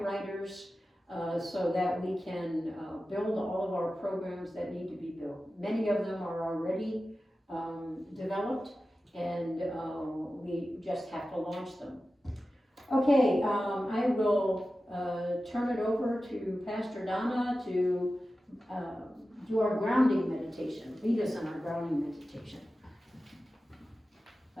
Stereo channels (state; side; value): normal; both; correlation 0.94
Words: writers so that we can build all of our programs that need to be built. Many of them are already developed, and we just have to launch them. Okay, I will turn it over to Pastor Donna to do our grounding meditation. Lead us in our grounding meditation.